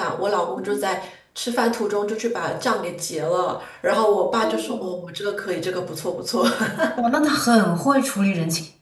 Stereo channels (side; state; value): both; identical; correlation 1.00